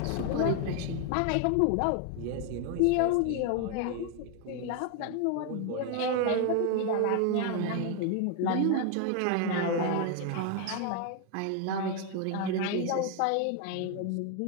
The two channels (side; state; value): both; different; correlation 0.01